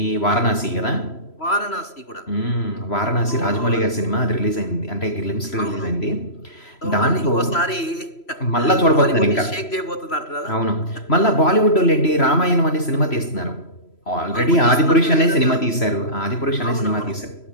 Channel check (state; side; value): late; right; 3.0 ms